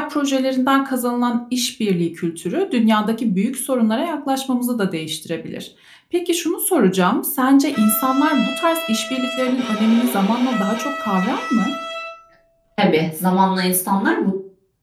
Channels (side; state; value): both; identical; correlation 1.00